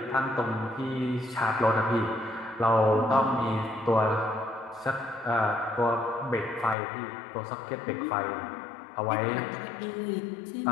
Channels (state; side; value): drops out; right; at 6.8 s